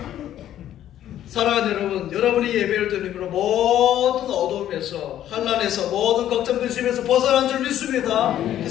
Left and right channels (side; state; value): right; quieter; 11.7 dB